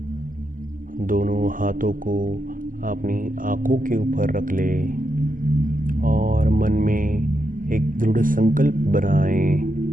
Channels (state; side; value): late; left; 0.40 ms